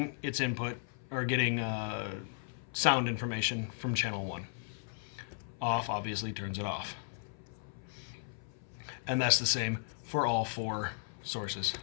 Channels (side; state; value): right; silent; 54 dB below the other